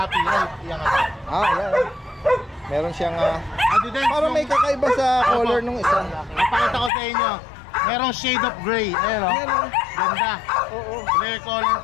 Right? Yan nga. Yan. Meron siyang Daddy Des, parang may kakaiba sa color nung isa. Napakita ko sa inyo. Merong shade of gray. Ayan o. Yan o. Ganda. Oo. Rare color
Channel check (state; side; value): drops out; right; at 6.9 s